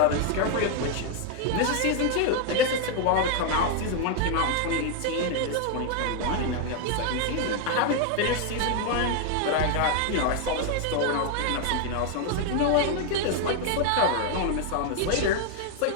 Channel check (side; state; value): both; different; correlation 0.00